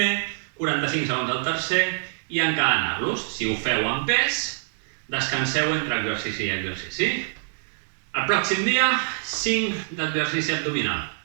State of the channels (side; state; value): left; silent; digital silence